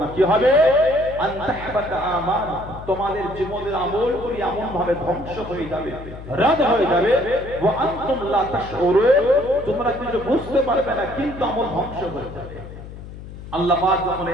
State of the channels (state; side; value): noise; left; hum, 13 dB below the sound